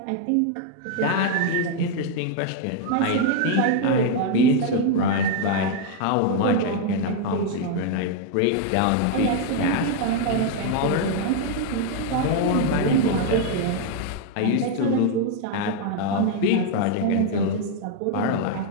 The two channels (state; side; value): different; both; correlation 0.00